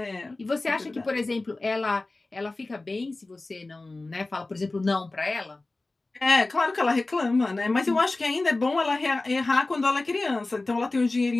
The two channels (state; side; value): quieter; right; 3.1 dB